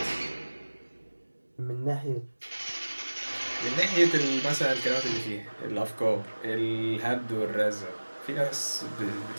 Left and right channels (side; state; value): both; inverted; correlation -1.00